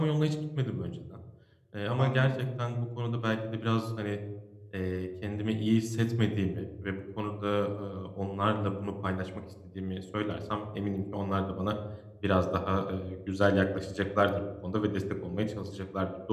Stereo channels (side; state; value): both; identical; correlation 1.00